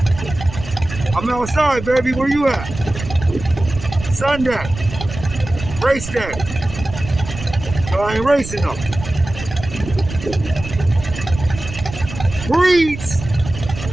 I'm outside, baby. Where you at? Sun deck. Race deck. So I ain't racing them. Breeds.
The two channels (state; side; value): noise; right; rumble, 10 dB below the sound